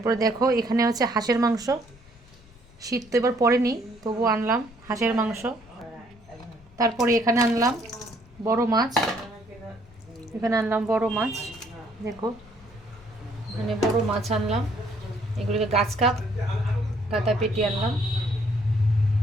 দেখো এখানে হচ্ছে হাঁসের মাংস। শীত তো এবার পড়েনি, তবু আনলাম হাঁসের মাংস। তারপরে এখানে আনলাম বড় মাছ। দেখো এখানে বড় মাছ আনলাম। এগুলিকে গাছ কাপ কাতা পেটি আনলাম।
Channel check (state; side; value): normal; both; correlation 0.65